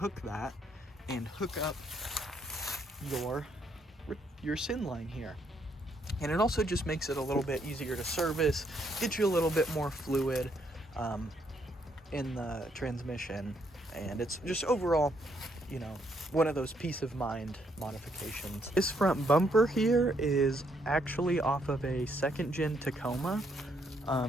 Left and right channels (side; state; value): both; normal; correlation 0.73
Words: that and hook up your SIN line here. And it also just makes it a little bit easier to service, get you a little bit more fluid in the transmission. And it's just overall, you know, one of those peace of mind modifications. This front bumper here is actually off of a 2nd gen Tacoma,